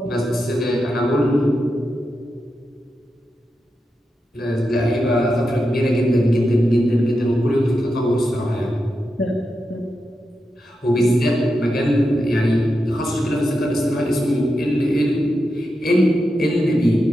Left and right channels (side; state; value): both; normal; correlation 0.88